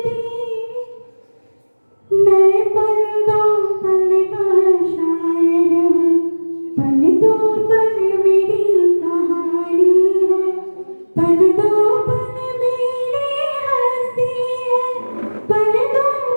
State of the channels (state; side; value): inverted; both; correlation -1.00